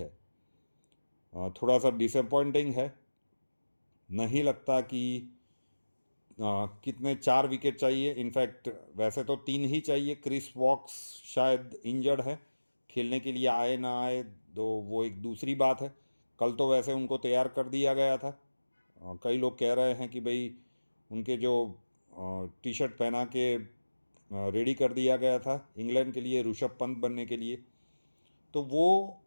थोड़ा सा डिसअपॉइंटिंग है। नहीं लगता कि कितने 4 विकेट चाहिए। इनफैक्ट वैसे तो 3 ही चाहिए। क्रिस वॉक्स शायद इंजर्ड है, खेलने के लिए आए ना आए तो वो एक दूसरी बात है। कल तो वैसे उनको तैयार कर दिया गया था। कई लोग कह रहे हैं कि भाई उनके जो टी शर्ट पहना के रेडी कर दिया गया था इंग्लैंड के लिए ऋषभ पंत बनने के लिए, तो वो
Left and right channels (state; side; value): inverted; both; correlation -1.00